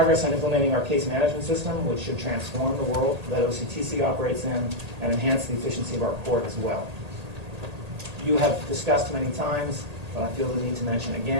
on implementing our case management system, which should transform the world that OCTC operates in and enhance the efficiency of our court as well. You have discussed many times, but I feel the need to mention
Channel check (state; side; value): late; left; 1.8 ms